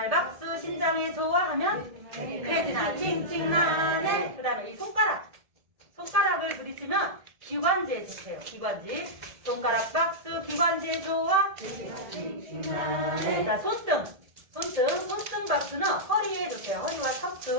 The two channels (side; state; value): left; late; 1.7 ms